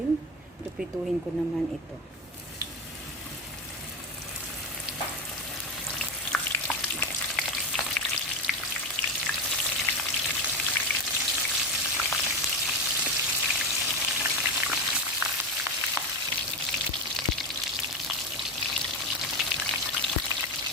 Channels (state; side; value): normal; both; correlation 0.17